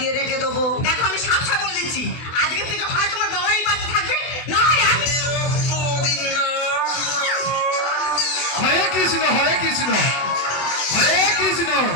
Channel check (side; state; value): right; late; 24 ms